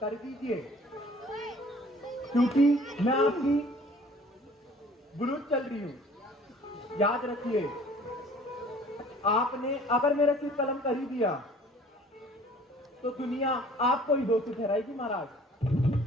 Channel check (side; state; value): both; normal; correlation 0.52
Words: कर दीजिए, क्योंकि मैं आपकी बुलूत चल रही हूं। याद रखिए, आपने अगर मेरा सिर कलम कर ही दिया तो दुनिया आपको ही दोषी ठहराएगी महाराज।